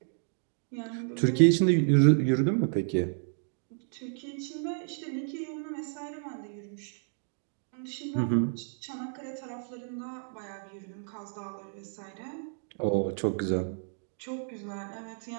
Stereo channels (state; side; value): silent; left; digital silence